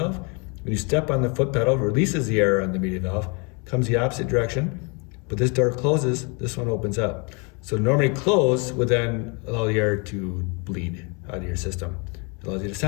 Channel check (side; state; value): right; quieter; 32.9 dB